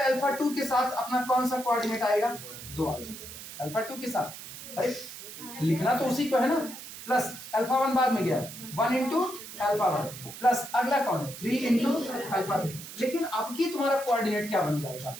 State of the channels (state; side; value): noise; right; hiss, 12 dB below the sound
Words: अल्फा 2 के साथ अपना कौन सा कोऑर्डिनेट आएगा, 2 आएगा अल्फा 2 के साथ। अरे लिखना तो उसी को है ना, प्लस अल्फा 1 बाद में गया 1 इंटू अल्फा 1 प्लस अगला कौन है 3 इंटू अल्फा 3। लेकिन अब की तुम्हारा कोऑर्डिनेट क्या बन जाएगा,